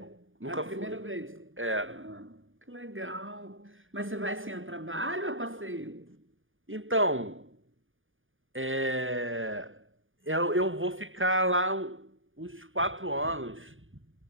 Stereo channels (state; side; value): late; left; 0.58 ms